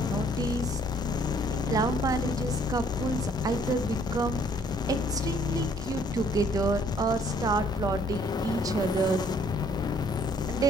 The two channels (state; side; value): normal; both; correlation 0.62